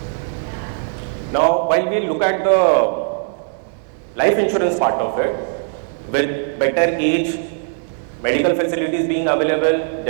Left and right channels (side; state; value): left; silent; digital silence